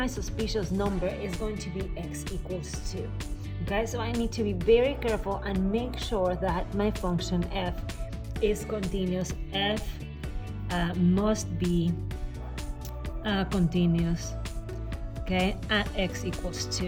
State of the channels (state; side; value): identical; both; correlation 1.00